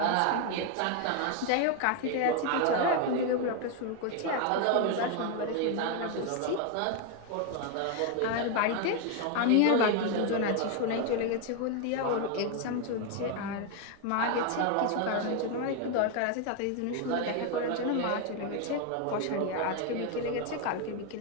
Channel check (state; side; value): different; both; correlation 0.01